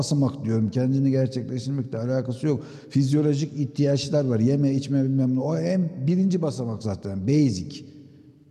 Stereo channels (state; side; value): identical; both; correlation 1.00